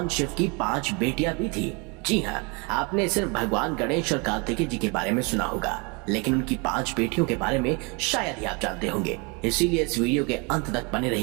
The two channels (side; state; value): left; quieter; 30.1 dB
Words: शिव की 5 बेटियां भी थी? जी हाँ, आपने सिर्फ भगवान गणेश और कार्तिकेय जी के बारे में सुना होगा, लेकिन उनकी 5 बेटियों के बारे में शायद ही आप जानते होंगे। इसीलिए इस वीडियो के अंत तक बने